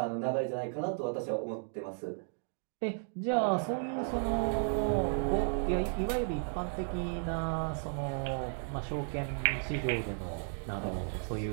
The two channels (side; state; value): left; silent; 55 dB below the other